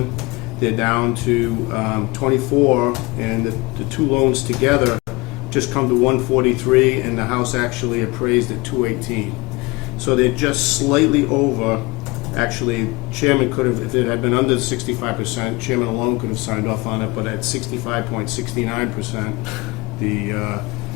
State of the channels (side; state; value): right; quieter; 24.5 dB